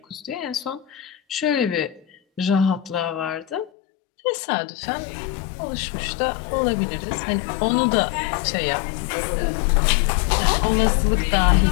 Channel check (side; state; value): right; drops out; at 3.7 s